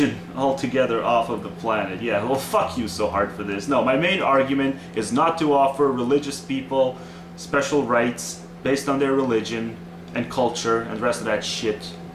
altogether off of the planet. Yeah, well, fuck you so hard for this. No, my main argument is not to offer religious people special rights based on their religion and culture and the rest of that shit.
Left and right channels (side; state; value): both; identical; correlation 1.00